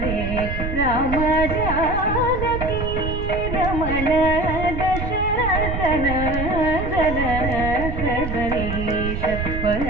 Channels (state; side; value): noise; right; rumble, 4 dB below the sound